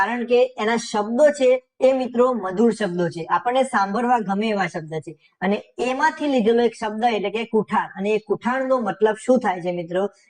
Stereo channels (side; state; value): both; identical; correlation 1.00